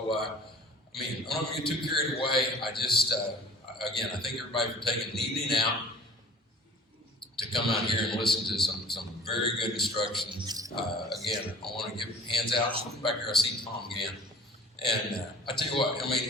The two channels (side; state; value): both; normal; correlation 0.46